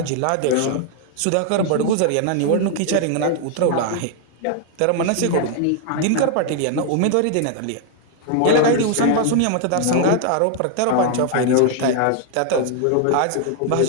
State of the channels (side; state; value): both; different; correlation 0.00